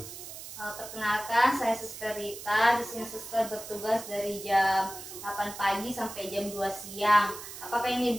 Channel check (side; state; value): right; noise; hiss, 12 dB below the sound